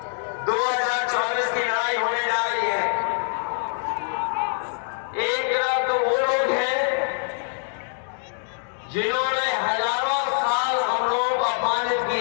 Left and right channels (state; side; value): silent; right; 59 dB below the other